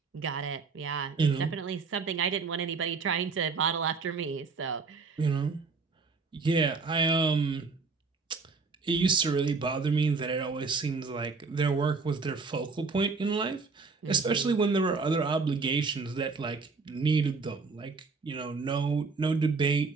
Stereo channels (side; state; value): left; quieter; 4.5 dB